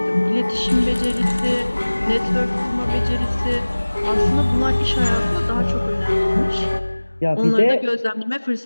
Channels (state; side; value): inverted; both; correlation -1.00